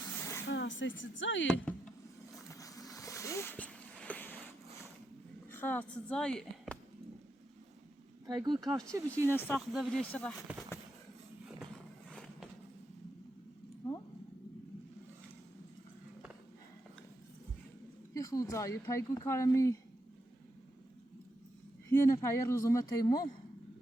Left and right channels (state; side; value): normal; both; correlation 0.84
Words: خلاص زای خلاص زای پایگوی کار چی بشه اینه ساخت بیرش را یه خود زای پایگوی کارمی یه نفر روزومه تیمو